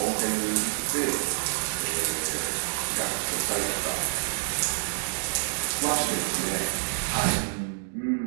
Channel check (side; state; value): left; silent; digital silence